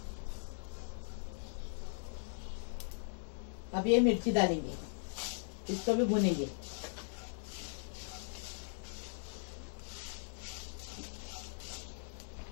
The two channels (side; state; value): right; silent; digital silence